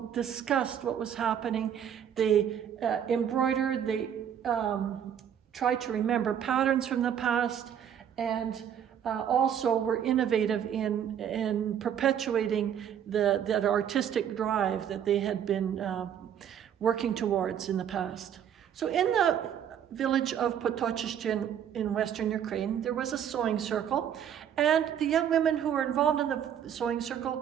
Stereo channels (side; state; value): left; quieter; 9.1 dB